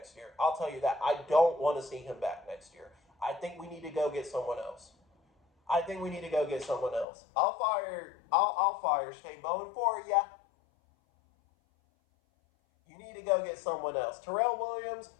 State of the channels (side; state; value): right; drops out; at 7.1 s